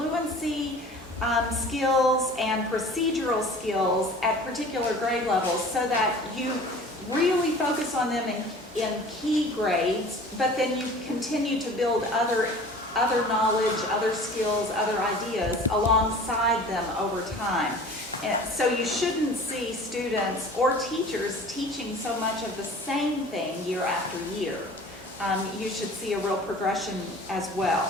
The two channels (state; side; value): normal; both; correlation 0.44